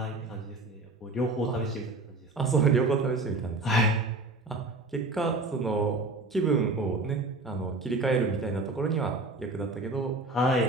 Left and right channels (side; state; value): left; quieter; 3.0 dB